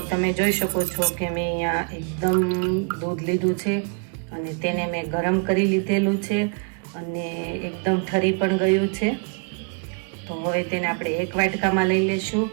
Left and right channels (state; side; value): quieter; left; 37.7 dB